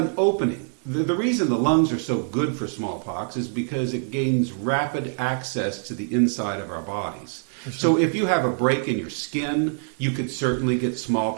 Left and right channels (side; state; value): left; silent; digital silence